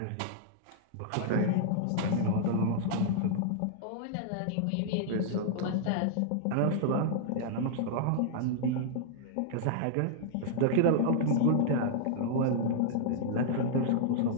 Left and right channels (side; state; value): both; different; correlation -0.01